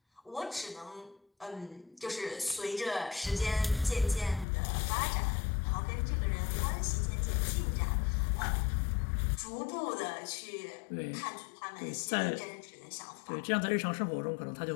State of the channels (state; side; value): drops out; right; at 4.5 s